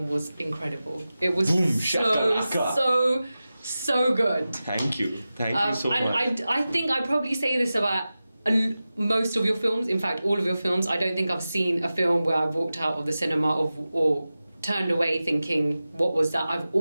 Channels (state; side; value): inverted; both; correlation -0.95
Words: was incredible. It was Boom, so good. Thank you so much. And I think I probably say this about most of your films. In fact, all of your films. I don't think I've seen a film where I've walked out of the cinema or turned away thinking, what was that? I've